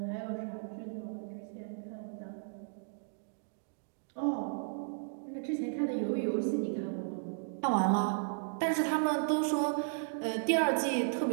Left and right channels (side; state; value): left; silent; digital silence